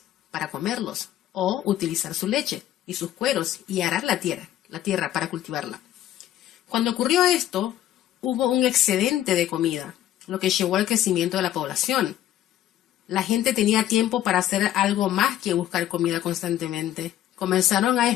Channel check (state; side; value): quieter; right; 12.5 dB